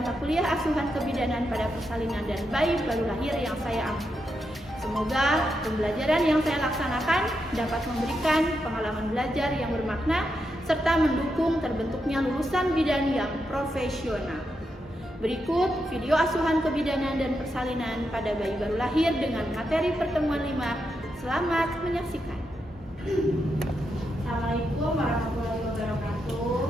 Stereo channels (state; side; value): normal; both; correlation 0.84